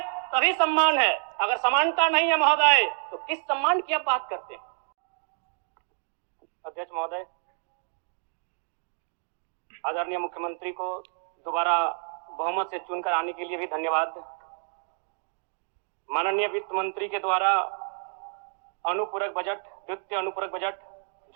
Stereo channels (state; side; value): silent; left; 59 dB below the other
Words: तभी सम्मान है। अगर समानता नहीं है महोदय तो किस सम्मान की आप बात करते हैं? अध्यक्ष महोदय, आदरणीय मुख्यमंत्री को दोबारा बहुमत से चुनकर आने के लिए भी धन्यवाद। माननीय वित्त मंत्री के द्वारा अनुपूरक बजट, द्वितीय अनुपूरक बजट